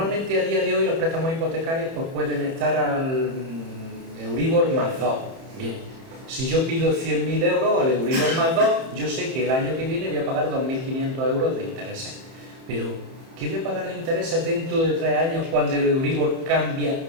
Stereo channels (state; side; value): late; left; 31 ms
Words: a día de hoy los préstamos hipotecarios pues pueden estar al Euribor más 2. Bien, si yo pido 100.000 euros al Euribor más 2, yo sé que el año que viene voy a pagar 2.500 euros de intereses. Pero, ¿qué voy a pagar de intereses dentro de 3 años cuando el Euribor cambia